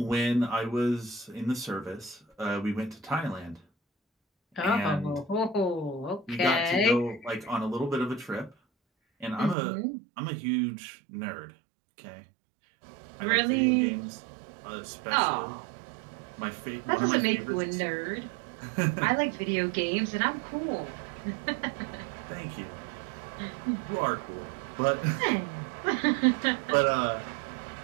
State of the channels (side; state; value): left; drops out; at 9.6 s